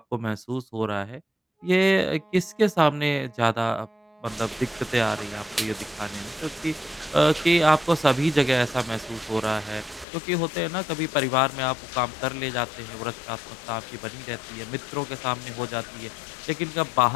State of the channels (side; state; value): right; drops out; at 10.1 s